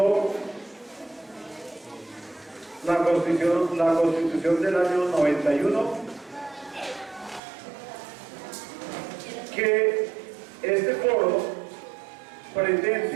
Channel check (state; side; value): drops out; left; at 7.4 s